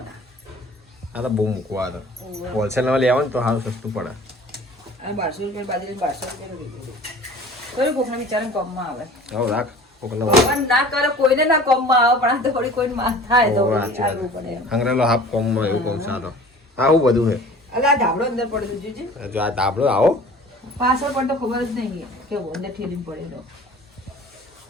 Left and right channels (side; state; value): both; normal; correlation 0.45